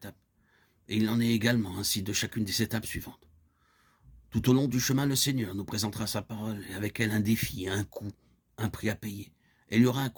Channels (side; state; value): both; identical; correlation 1.00